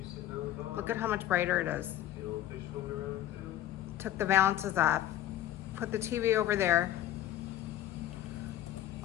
Look at how much brighter it is. Took the valances off. Put the TV over there.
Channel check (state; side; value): quieter; right; 12.8 dB